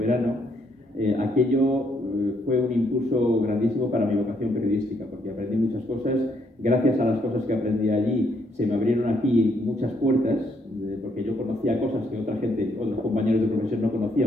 aquello fue un impulso grandísimo para mi vocación periodística, porque aprendí muchas cosas. Gracias a las cosas que aprendí allí, se me abrieron aquí muchas puertas, porque yo conocía cosas que otros compañeros de profesión no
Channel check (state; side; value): normal; both; correlation 0.72